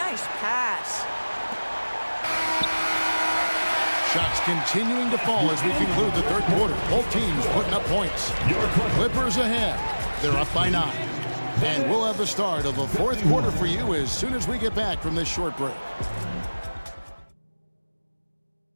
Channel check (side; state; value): both; inverted; correlation -1.00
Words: pass. Shots continuing to fall as we conclude the third quarter. Both teams putting up points. Clippers ahead. They're up by 9. And we'll have the start of the fourth quarter for you as soon as we get back from this short break.